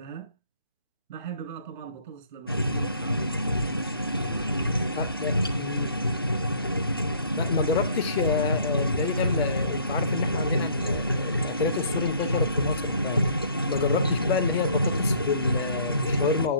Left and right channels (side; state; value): both; inverted; correlation -0.58